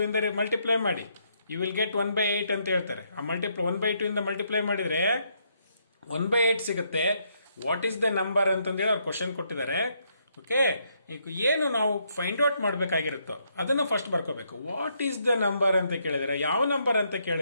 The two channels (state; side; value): inverted; both; correlation -0.74